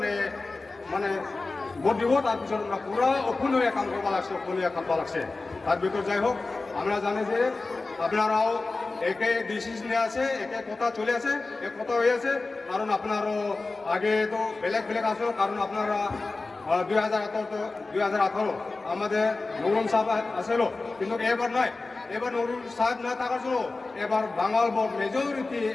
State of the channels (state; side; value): quieter; right; 3.5 dB